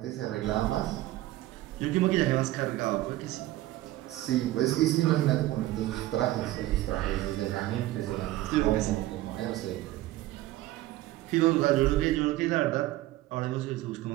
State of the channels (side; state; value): left; quieter; 16.3 dB